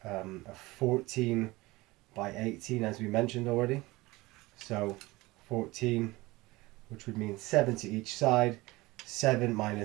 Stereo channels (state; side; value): quieter; left; 20.8 dB